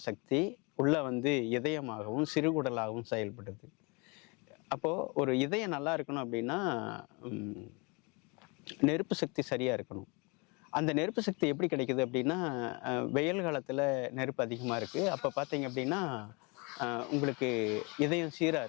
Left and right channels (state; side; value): quieter; right; 29.6 dB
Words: சக்தி உள்ளே இதயமாகவும் சிறுகுடலாகவும் செயல்படுது. அப்போது ஒரு இதயம் நல்லா இருக்கணும் அப்படின்னா நெருப்பு சக்தி சரியாக இருக்கணும். அந்த நெருப்பு சக்தி எப்படி கிடைக்குது அப்படின்னா, வெயில் காலத்தில் நெருப்பு அதிகமாக இருக்குது. அப்போ பார்த்தீங்க அப்படின்னா உங்களுக்கு இதயம் சீராக